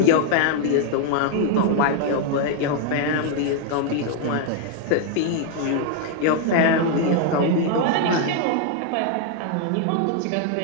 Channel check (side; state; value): both; different; correlation 0.00